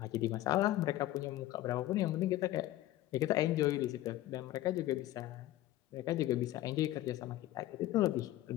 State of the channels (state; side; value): quieter; right; 15.1 dB